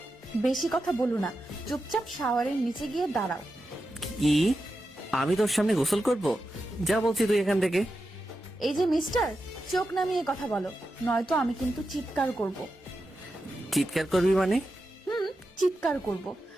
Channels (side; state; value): both; normal; correlation 0.89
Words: বেশি কথা বলো না, চুপচাপ শাওয়ারের নিচে গিয়ে দাঁড়াও। কি? আমি তোর সামনে গোসল করব? যা বলছি তুই এখান থেকে। এই যে মিস্টার, চোখ নামিয়ে কথা বলো, নয়তো আমি কিন্তু চিৎকার করব। চিৎকার করবি মানে? চিৎকার করব,